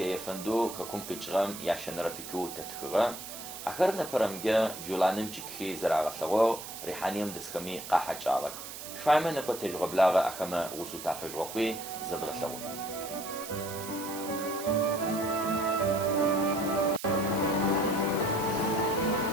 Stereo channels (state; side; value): noise; right; hiss, 11 dB below the sound